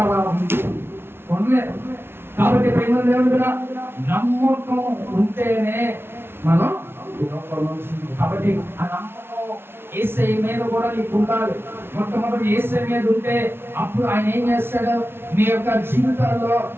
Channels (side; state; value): left; late; 0.11 ms